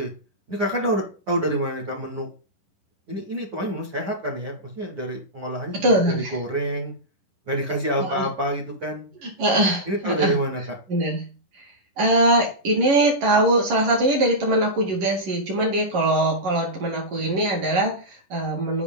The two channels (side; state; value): left; late; 11 ms